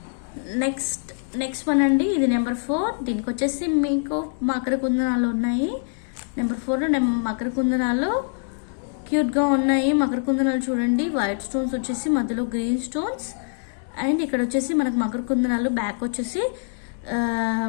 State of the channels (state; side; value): silent; right; digital silence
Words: నెక్స్ట్ వన్ అండి, ఇది నెంబర్ 4. దీనికి వచ్చేసి మీకు మకర కుందనాలు ఉన్నాయి. నెంబర్ 4 మకర కుందనాలు క్యూట్గా ఉన్నాయి. మకర కుందనాలు చూడండి, వైట్ స్టోన్స్ వచ్చేసి మధ్యలో గ్రీన్ స్టోన్స్, అండ్ ఇక్కడ వచ్చేసి మనకు మకర కుందనాలు బ్యాక్ వచ్చేసి